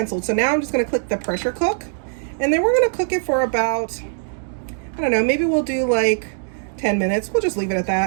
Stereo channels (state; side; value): silent; left; digital silence